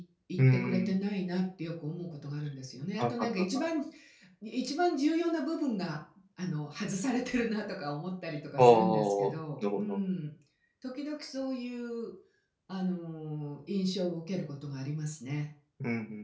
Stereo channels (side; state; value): both; identical; correlation 1.00